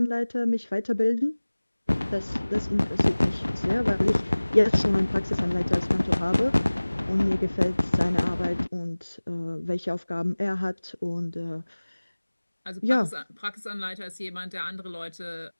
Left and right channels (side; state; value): both; inverted; correlation -1.00